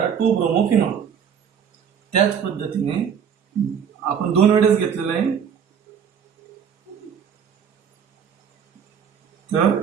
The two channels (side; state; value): left; quieter; 7.7 dB